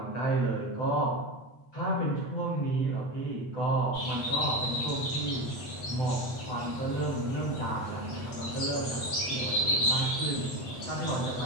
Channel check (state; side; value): late; right; 8.3 ms